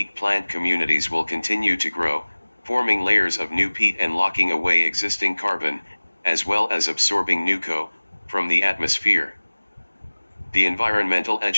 plant communities will continue to grow, forming layers of new peat and locking away existing carbon, as well as absorbing new CO from the atmosphere. The Environmental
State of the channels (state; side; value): inverted; both; correlation -1.00